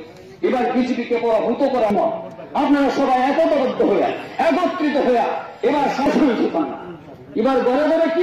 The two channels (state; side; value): identical; both; correlation 1.00